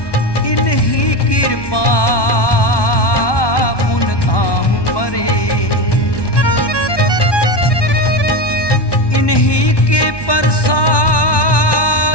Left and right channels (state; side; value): late; right; 1.2 ms